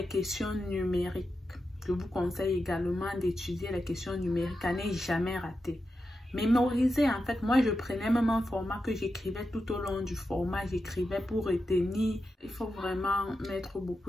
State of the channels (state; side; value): normal; both; correlation 0.89